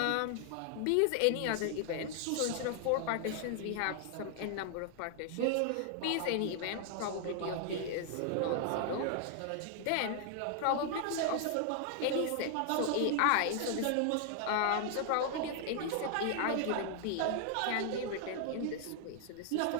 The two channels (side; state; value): both; different; correlation 0.00